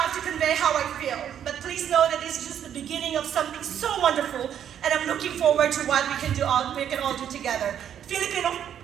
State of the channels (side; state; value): left; quieter; 9.5 dB